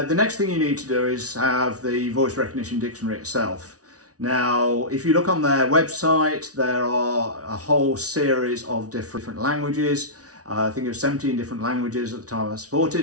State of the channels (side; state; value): left; late; 0.67 ms